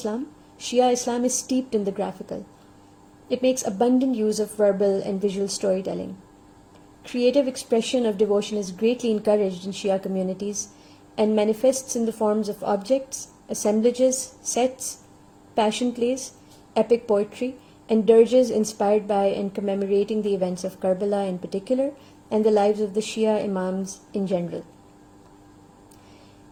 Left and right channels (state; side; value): identical; both; correlation 1.00